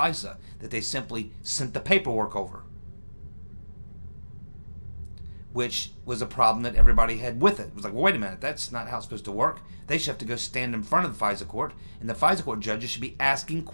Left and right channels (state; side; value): inverted; both; correlation -1.00